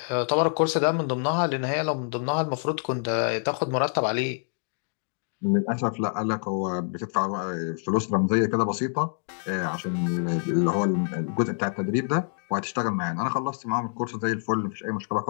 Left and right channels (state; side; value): silent; right; digital silence